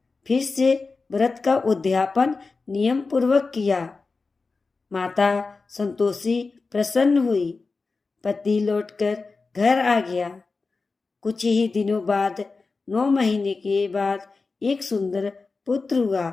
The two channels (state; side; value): quieter; right; 4.1 dB